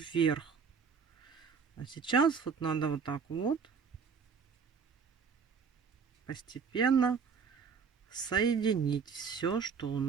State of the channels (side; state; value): left; quieter; 6.1 dB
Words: А сейчас вот надо вот так вот постепенно соединить все, что у